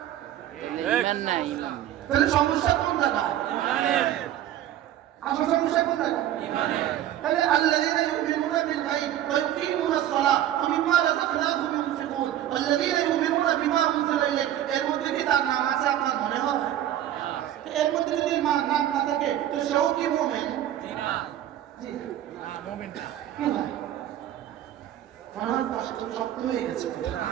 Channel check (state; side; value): quieter; left; 12.0 dB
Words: ঈমান নাই। তাহলে সমস্যা কোন জায়গায়? আসল সমস্যা কোন জায়গায়? তাহলে আল্লাযীনা ইউমিনুনা বিল গায়ব ওয়া ইউকিমুনাস সালাহ ওয়া মিম্মা রাযাকনাহুম ইউনফিকুন ওয়াল্লাযীনা ইউমিনুনা বিমা উনজিলা ইলাইক। এর মধ্যে কি তার নাম আছে আপনার মনে হয়? এর মধ্যে যদি নাম না থাকে তো সেও কি মুমিন? জি না, মুমিন না। কি হয়? মনে হয় কষ্ট শক্ত হয়ে গেছে।